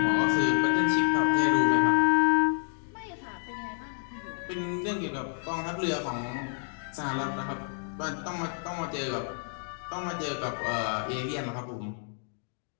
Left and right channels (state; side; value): silent; right; 58 dB below the other